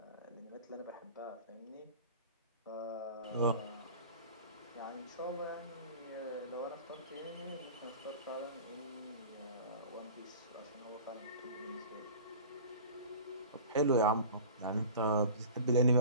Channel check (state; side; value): inverted; both; correlation -0.38